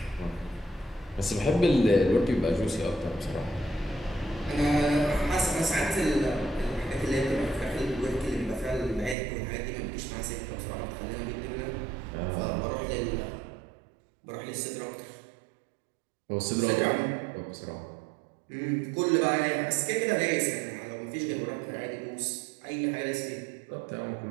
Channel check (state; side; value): drops out; left; at 9.2 s